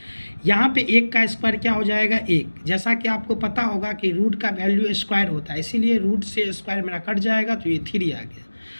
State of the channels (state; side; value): inverted; both; correlation -1.00